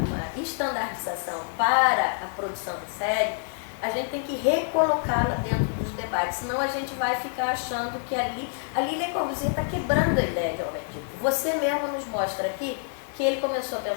estandardização para a produção de série, a gente tem que recolocá-la dentro dos debates, senão a gente vai ficar achando que ali Le Corbusier está quebrando a ideia de homem tipo. Você mesmo nos mostra aqui que ele começou a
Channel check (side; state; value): right; silent; 60 dB below the other